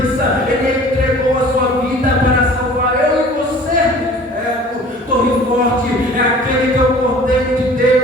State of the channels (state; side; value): normal; both; correlation 0.47